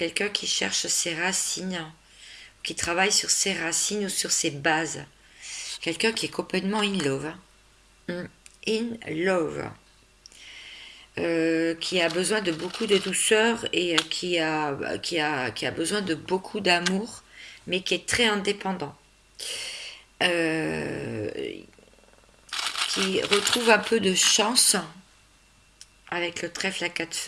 qui cherche ses racines, qui travaille sur ses racines ou sur ses bases. Quelqu'un qui est complètement in love. In love. Qui a besoin de beaucoup de douceur et qui a besoin de beaucoup d'amour, mais qui est très indépendant. Euh, qui retrouve un peu de chance avec le trèfle à quatre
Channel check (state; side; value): identical; both; correlation 1.00